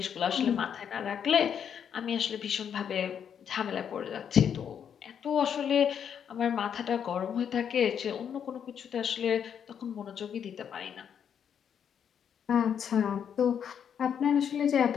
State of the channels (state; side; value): quieter; right; 8.2 dB